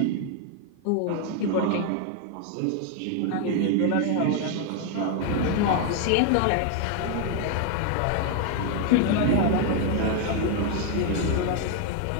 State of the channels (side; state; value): both; different; correlation 0.00